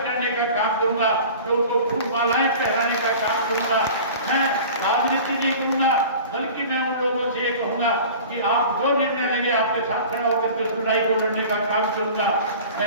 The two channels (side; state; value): both; inverted; correlation -0.40